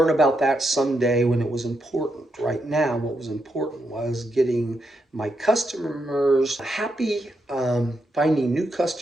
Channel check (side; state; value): both; normal; correlation 0.82